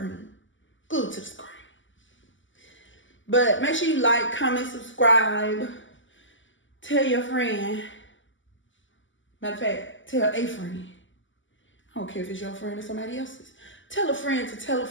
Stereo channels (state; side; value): late; right; 0.55 ms